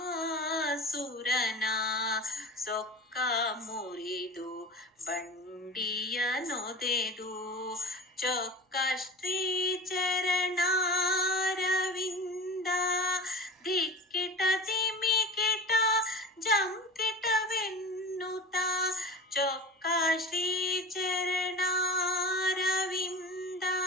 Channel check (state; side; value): normal; both; correlation 0.34